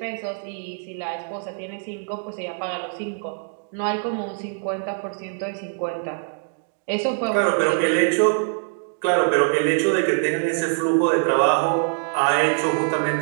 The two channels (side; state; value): left; silent; 61 dB below the other